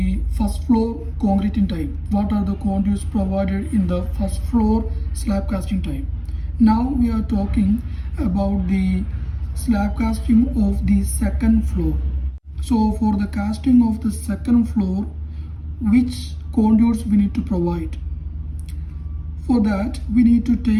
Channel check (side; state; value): both; identical; correlation 1.00